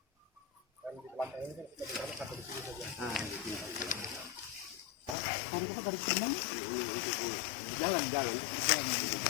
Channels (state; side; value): drops out; right; at 5.2 s